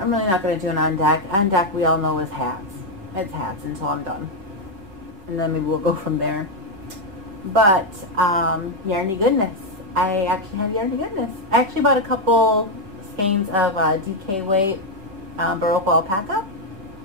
not going to do an on deck. On deck we all know is hats. It's hats until I'm done. And then maybe we'll go from there. But, yarny goodness. I actually have yarny goodness. I actually bought a couple skeins of DK weight Baroque alpaca.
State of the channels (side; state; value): left; late; 5.1 ms